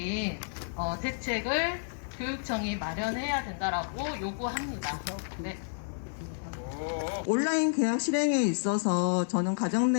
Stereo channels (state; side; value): silent; right; digital silence